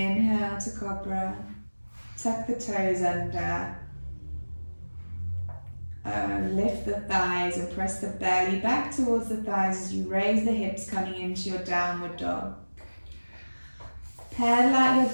to cobra. Tuck the toes under. Lift the thighs and press the belly back towards the thighs as you raise the hips, coming into your downward dog. Pedal out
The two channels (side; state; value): both; inverted; correlation -1.00